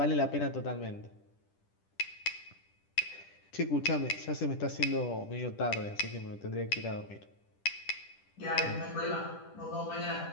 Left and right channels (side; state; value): right; late; 10 ms